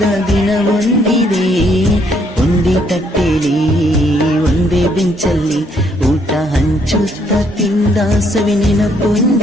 ದಿನ ಬಂದಿದೆ. ಒಂದೇ ತಟ್ಟೆಲಿ ಒಂದೇ ಬೆಂಚಲ್ಲಿ ಊಟ ಹಂಚುತ್ತ ತಿಂದ ಸವಿ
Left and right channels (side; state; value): both; normal; correlation 0.69